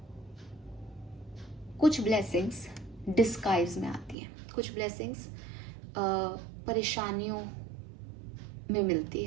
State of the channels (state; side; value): drops out; left; at 4.2 s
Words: कुछ ब्लेसिंग्स डिस्गाइज में आती हैं, कुछ ब्लेसिंग्स परेशानियों में मिलती